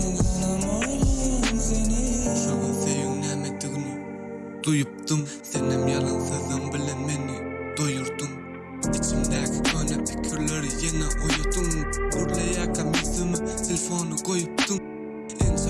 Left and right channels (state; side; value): identical; both; correlation 1.00